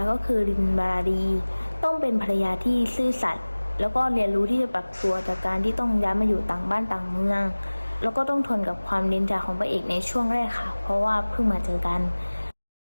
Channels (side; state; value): both; inverted; correlation -1.00